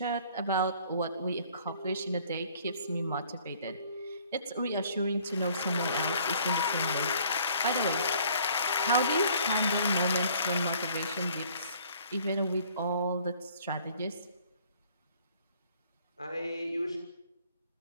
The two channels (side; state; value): both; inverted; correlation -0.57